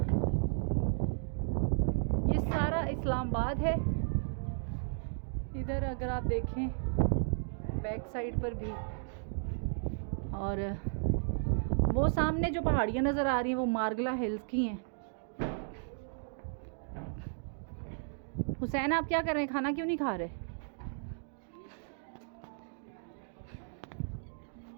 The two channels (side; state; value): left; silent; digital silence